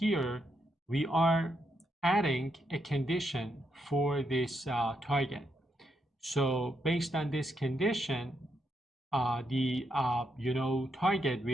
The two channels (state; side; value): normal; both; correlation 0.80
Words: we are adding a condition for this target. So based on this condition, the target